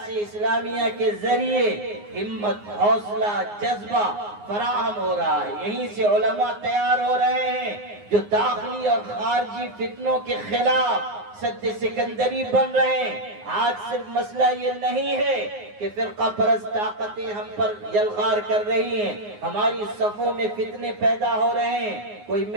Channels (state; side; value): late; left; 9.6 ms